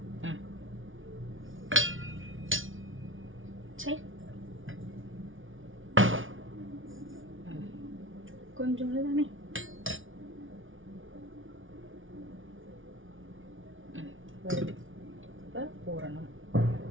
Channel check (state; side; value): late; left; 0.57 ms